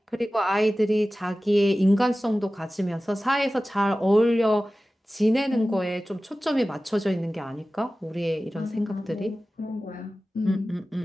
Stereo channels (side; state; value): both; normal; correlation 0.96